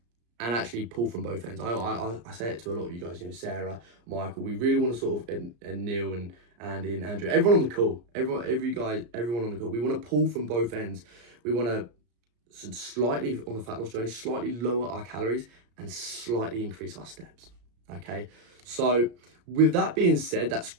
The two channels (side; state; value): left; late; 34 ms